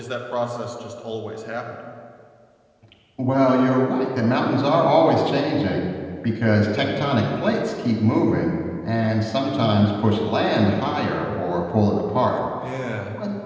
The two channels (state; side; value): identical; both; correlation 1.00